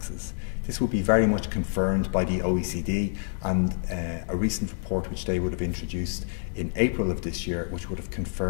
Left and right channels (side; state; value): right; silent; digital silence